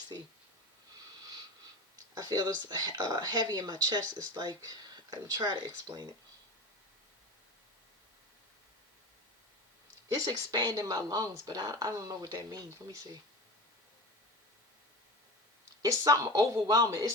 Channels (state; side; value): normal; both; correlation 0.30